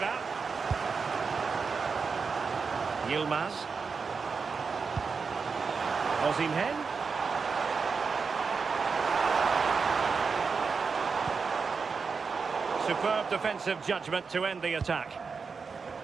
Yilmaz. Osimhen. Superb defensive judgment to end the attack.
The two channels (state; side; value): quieter; left; 5.2 dB